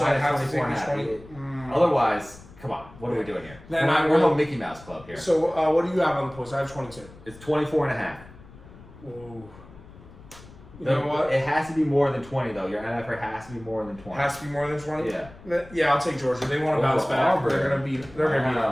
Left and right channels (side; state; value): left; noise; rumble, 20 dB below the sound